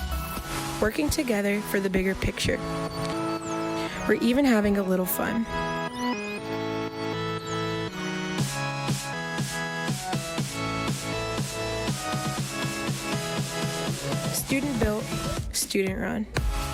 Working together for the bigger picture. We're even having a little fun. Student built, student run.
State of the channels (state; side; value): identical; both; correlation 1.00